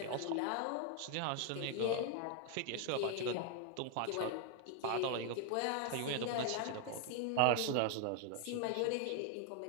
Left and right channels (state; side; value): different; both; correlation 0.01